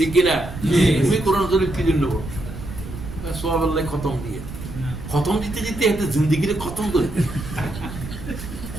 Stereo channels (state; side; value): noise; right; rumble, 10 dB below the sound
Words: কিনা? তুমি কোরআন শরীফ কি জন্য বলো? সোয়াবের লাই খতম দিয়ে, খতম দিতে দিতে একটা জিন্দিগির খতম করে,